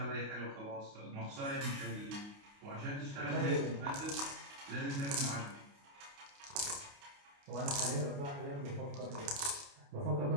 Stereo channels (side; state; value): left; late; 29 ms